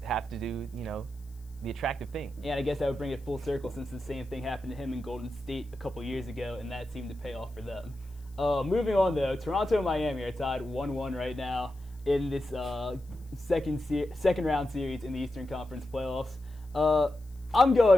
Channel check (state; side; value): noise; left; hiss, 29 dB below the sound